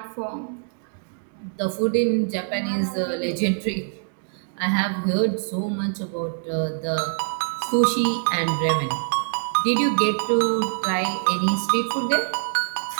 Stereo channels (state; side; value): silent; left; digital silence